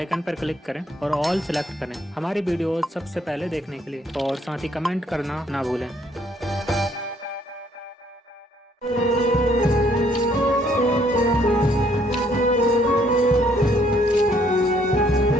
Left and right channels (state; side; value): normal; both; correlation 0.66